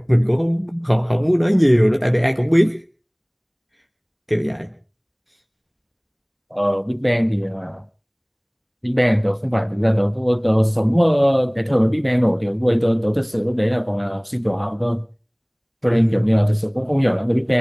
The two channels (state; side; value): identical; both; correlation 1.00